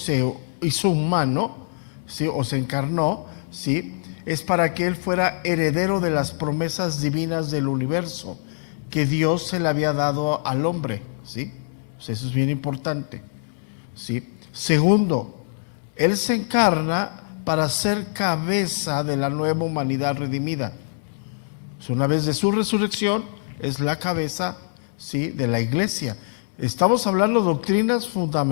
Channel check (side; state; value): right; silent; digital silence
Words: hizo humano, ¿sí?, o se encarnó, ¿sí?, es para que él fuera heredero de las promesas divinas del universo que Dios se le había dado al hombre, ¿sí? O sea, eso es bien importante, ¿sí? Segundo, él se encarna para ser cabeza de la nueva humanidad redimida. Una vez de su resurrección, es la cabeza, ¿sí?, de la iglesia. Estamos hablando de doctrinas